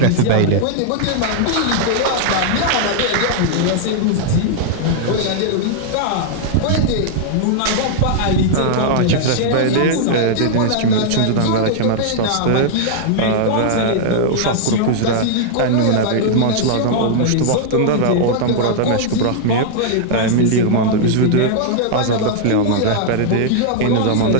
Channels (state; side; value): different; both; correlation -0.01